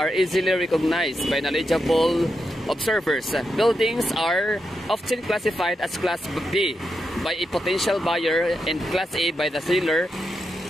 easily recognized by knowledgeable observers. Buildings are often classified as Class B by a potential buyer and Class A by the seller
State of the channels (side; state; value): both; normal; correlation 0.86